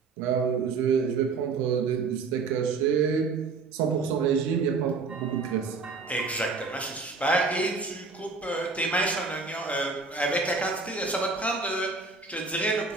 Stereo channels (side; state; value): left; quieter; 4.3 dB